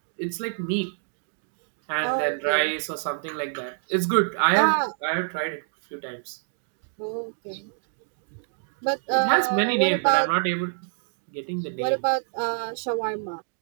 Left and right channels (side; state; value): left; silent; digital silence